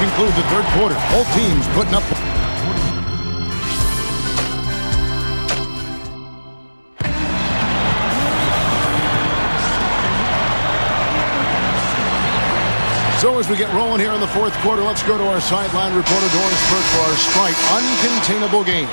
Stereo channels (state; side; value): inverted; both; correlation -1.00